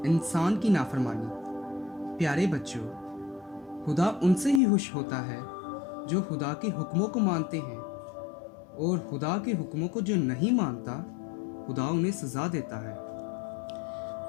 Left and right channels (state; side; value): drops out; right; at 4.6 s